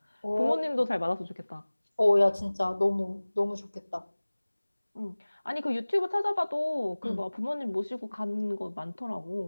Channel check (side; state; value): both; inverted; correlation -1.00